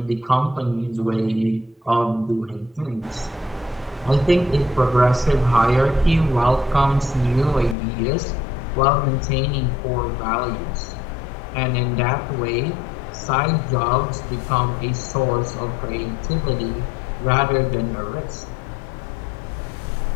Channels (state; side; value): drops out; right; at 7.8 s